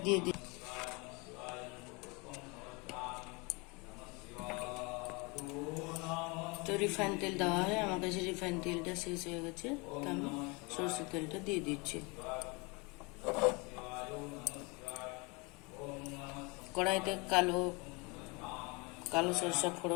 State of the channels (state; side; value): quieter; right; 28.5 dB